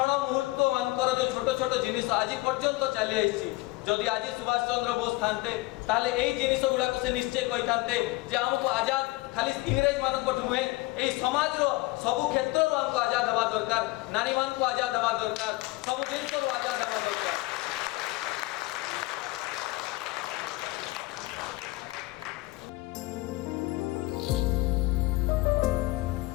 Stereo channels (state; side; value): quieter; right; 21.4 dB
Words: मुहूर्त मानकर जो छोट छोट जिनिस आज पर्यंत चली आइछि जदि आज सुभाष चंद्र बोस थानते ताले एई जिनिस गुडा को से निश्चय कहि थानते जे हमको आजाद खाली इंग्रेज मान को नुहे एई समाज रो सब क्षेत्र रो हमको आजाद हवा दरकार नारी मान को आजाद हवा दरकार सब जिनिस रो आजाद हवा दरकार